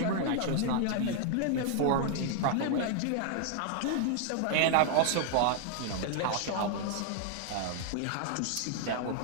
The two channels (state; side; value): different; both; correlation 0.00